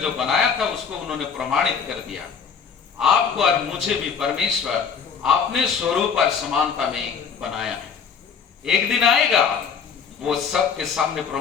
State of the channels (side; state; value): right; quieter; 6.5 dB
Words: जो बनाया था उसको उन्होंने प्रमाणित कर दिया। आपको और मुझे भी परमेश्वर अपने स्वरूप और समानता में बनाया है। एक दिन आएगा, वो सबके सामने